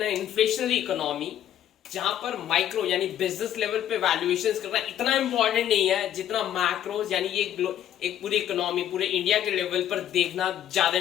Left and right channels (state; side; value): quieter; right; 10.8 dB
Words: a inflationary economy जहां पर micro यानी business level पे वैल्यूएशंस करना इतना इंपॉर्टेंट नहीं है जितना मैक्रोज यानी ये एक पूरी इकोनॉमी पूरे इंडिया के लेवल पर देखना ज्यादा